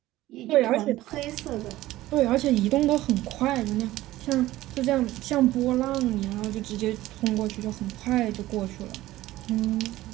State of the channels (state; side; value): quieter; left; 16.2 dB